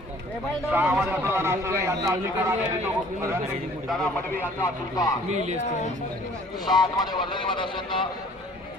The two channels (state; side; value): normal; both; correlation 0.53